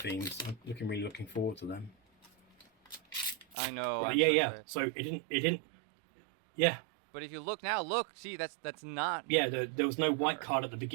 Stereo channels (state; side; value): drops out; left; at 3.6 s